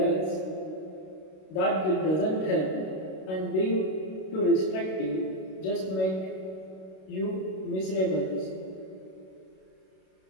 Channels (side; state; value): right; late; 32 ms